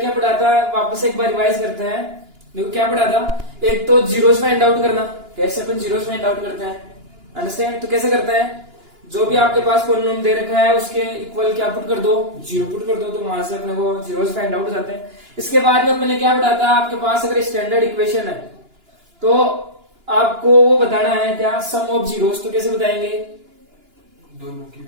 पढ़ा था, वापस एक बार रिवाइज करते हैं। देखो क्या पढ़ा था, एक तो जीरोस फाइंड आउट करना। कैसे अपन जीरोस फाइंड आउट करते हैं, अंडरस्टैंड? तो कैसे करते हैं, जो भी आपके पास पॉलिनोम दे रखा है उसके इक्वल क्या पुट कर दो, जीरो पुट कर दो, तो वहां से अपने को जीरोस फाइंड आउट हो जाते हैं। इसके बाद में अपन ने क्या पढ़ा था, आपके पास अगर स्टैंडर्ड इक्वेशन है तो आपको वो बताना है क्या, सम ऑफ जीरोस। तो कैसे बताएंगे, दोनों की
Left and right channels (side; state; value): left; late; 2.9 ms